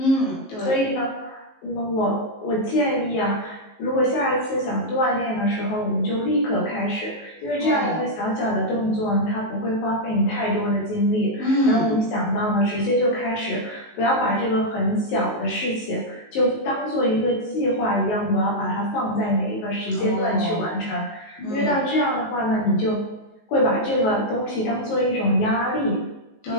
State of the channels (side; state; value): right; late; 19 ms